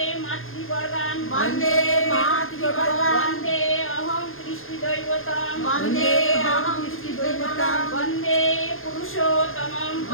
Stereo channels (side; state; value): right; late; 0.60 ms